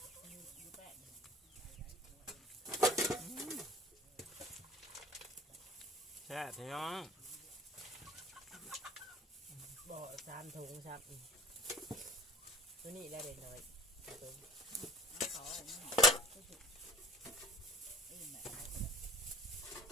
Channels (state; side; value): normal; both; correlation 0.44